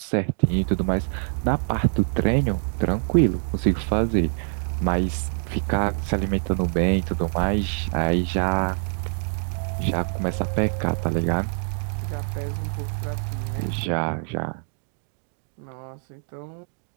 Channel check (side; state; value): left; silent; 62 dB below the other